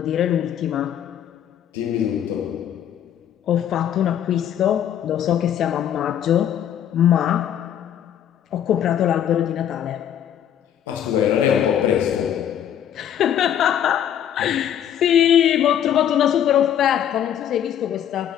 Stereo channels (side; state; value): right; quieter; 10.0 dB